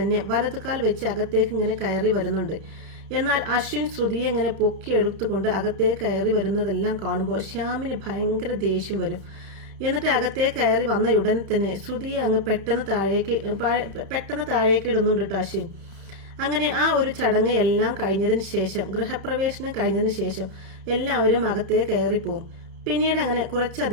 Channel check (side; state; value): left; late; 31 ms